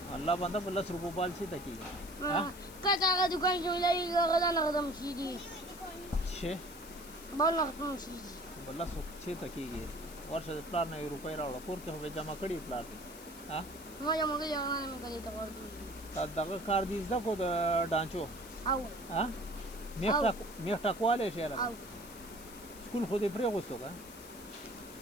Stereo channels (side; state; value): left; noise; hiss, 17 dB below the sound